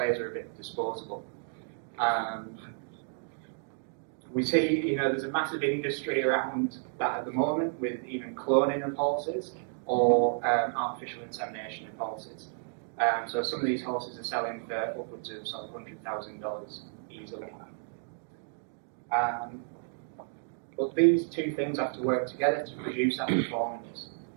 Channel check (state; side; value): silent; left; digital silence